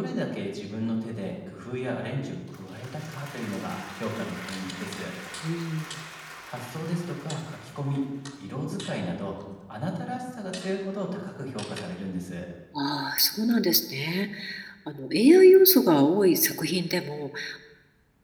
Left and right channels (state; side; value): identical; both; correlation 1.00